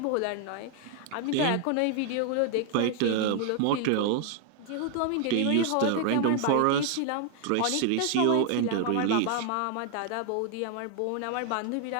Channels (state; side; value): different; both; correlation 0.00